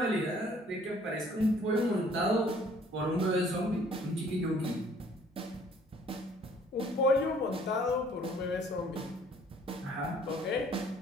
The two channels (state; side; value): normal; both; correlation 0.57